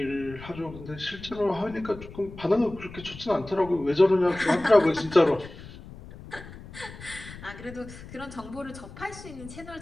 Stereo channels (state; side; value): noise; left; rumble, 15 dB below the sound